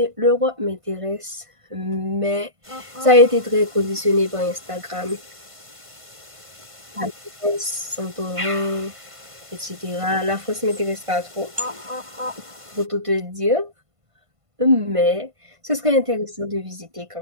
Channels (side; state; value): left; late; 1.5 ms